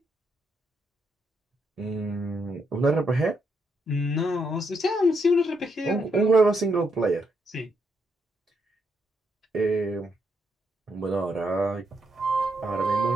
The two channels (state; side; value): normal; both; correlation 0.78